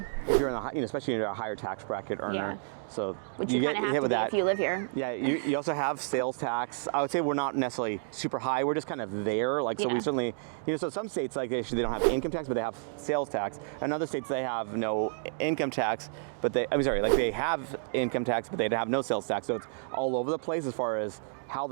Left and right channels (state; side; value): silent; left; digital silence